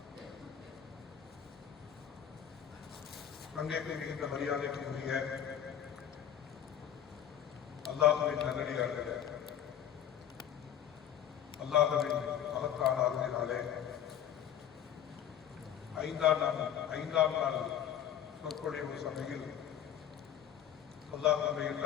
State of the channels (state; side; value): quieter; right; 9.6 dB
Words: அங்கேக்கு மிகுந்த மரியாதைக்குரிய அல்லாஹ்வின் நல்லடியார்களே, அல்லாஹ்வின் மகத்தான அருளினாலே ஐந்தாம் நாள் சொற்பொழிவு சபையில் அல்லாஹ் நம்மை